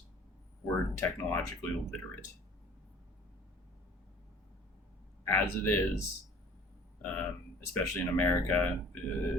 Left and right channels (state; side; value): normal; both; correlation 0.50